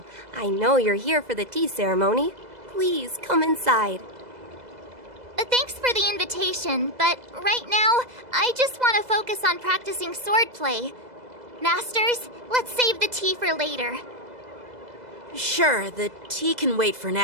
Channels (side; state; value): left; late; 2.0 ms